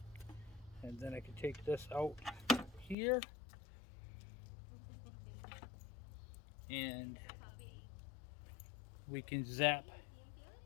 And then I can take this out here and we can zap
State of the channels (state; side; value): drops out; right; at 3.0 s